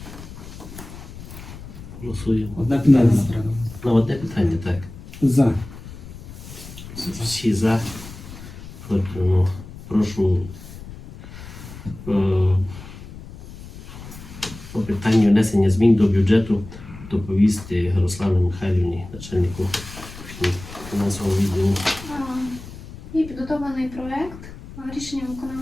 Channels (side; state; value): left; noise; rumble, 15 dB below the sound